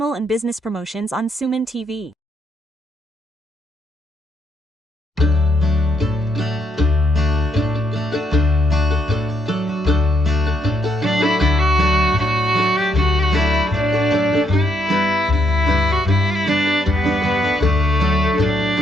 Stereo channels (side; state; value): both; normal; correlation 0.75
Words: and business promotions on Suman TV.